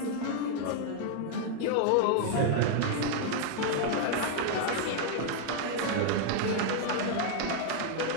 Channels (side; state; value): both; different; correlation 0.00